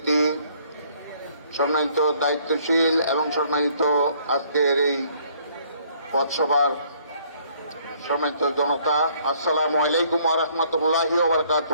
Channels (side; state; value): both; inverted; correlation -0.62